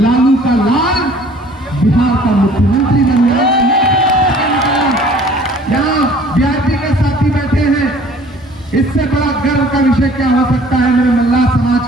का लाल बिहार का मुख्यमंत्री बन जाएगा। यहाँ वीआईपी के साथी बैठे हैं, इससे बड़ा गर्व का विषय क्या हो सकता है मेरे मल्लाह समाज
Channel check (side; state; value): both; normal; correlation 0.52